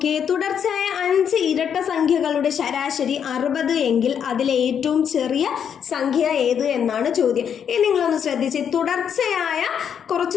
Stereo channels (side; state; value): right; quieter; 8.0 dB